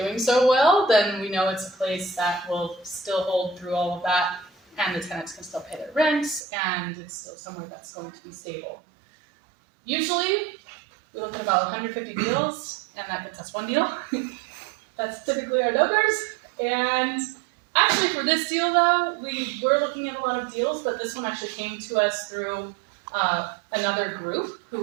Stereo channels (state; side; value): drops out; left; at 6.4 s